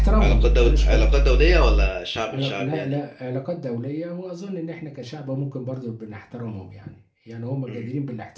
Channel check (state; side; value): identical; both; correlation 1.00